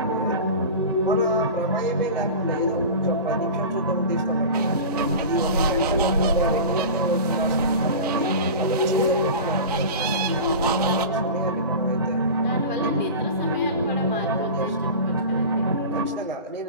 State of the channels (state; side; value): inverted; both; correlation -0.31